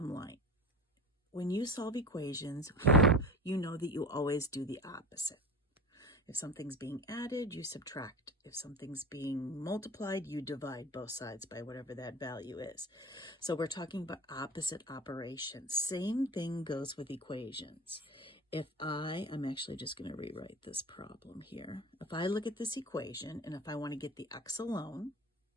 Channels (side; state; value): both; normal; correlation 0.31